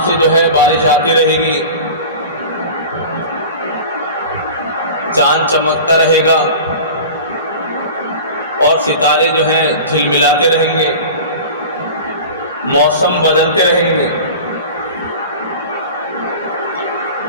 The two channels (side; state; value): both; inverted; correlation -0.36